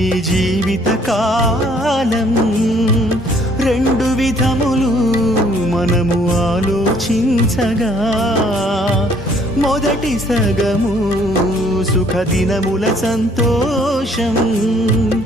జీవిత కాలం రెండు విధములు మనము ఆలోచించగా, మొదటి సగము సుఖదినముల సంతోషం,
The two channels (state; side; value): normal; both; correlation 0.61